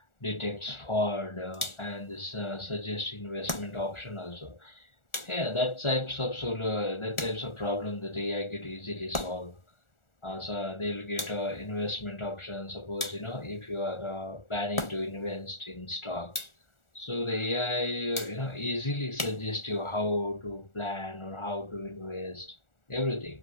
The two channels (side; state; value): right; late; 1.4 ms